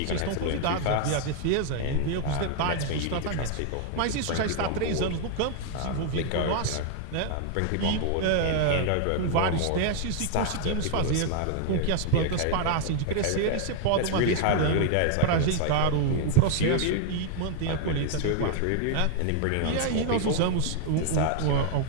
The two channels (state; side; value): different; both; correlation 0.00